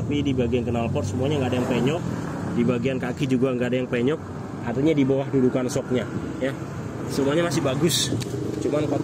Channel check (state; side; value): identical; both; correlation 1.00